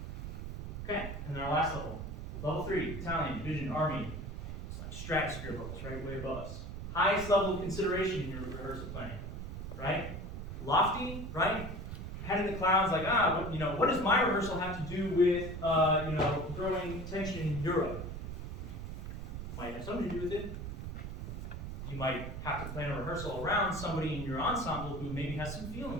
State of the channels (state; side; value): noise; right; rumble, 7 dB below the sound